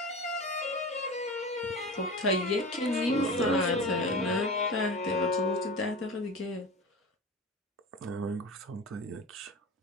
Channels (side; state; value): both; normal; correlation 0.30